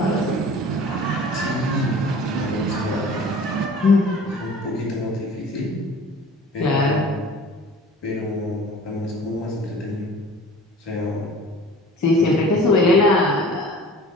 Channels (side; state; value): both; normal; correlation 0.44